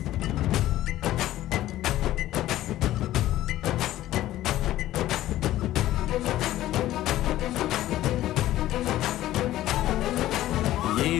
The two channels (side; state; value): right; quieter; 14.4 dB